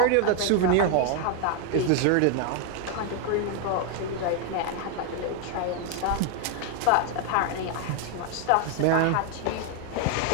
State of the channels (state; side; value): different; both; correlation 0.01